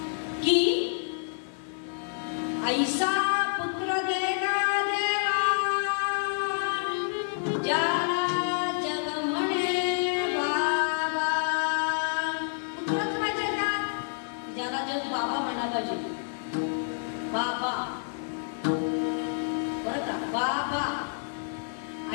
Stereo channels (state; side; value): silent; right; digital silence